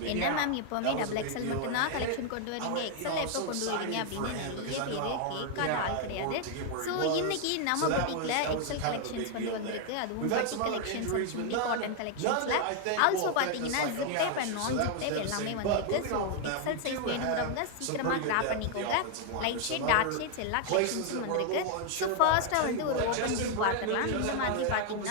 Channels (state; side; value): different; both; correlation 0.00